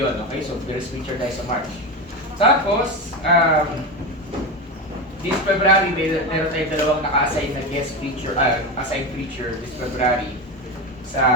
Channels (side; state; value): both; normal; correlation 0.19